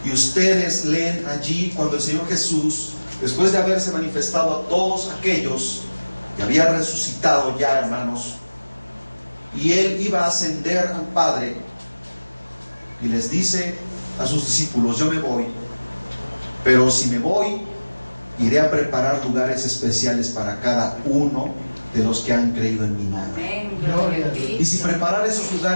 y ustedes leen allí cuando el Señor Jesús, después de haberse manifestado a todos aquellos que había resucitado ya, hermanos, y Él iba a ascender al Padre, y les dice a sus discípulos: yo me voy, pero si me voy, iré a preparar lugares especiales para cada uno de los que han creído en mi nombre. Y si preparar esos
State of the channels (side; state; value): both; inverted; correlation -1.00